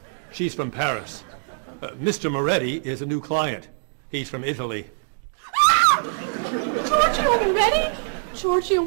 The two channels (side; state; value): left; silent; digital silence